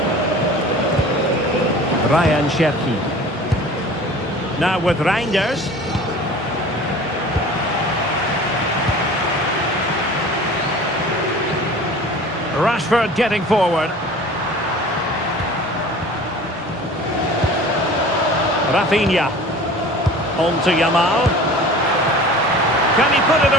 Ryan Cherki. Now with Reinders. Rashford getting forward. Rafinha. On to Yamal. Can he put it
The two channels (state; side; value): normal; both; correlation 0.42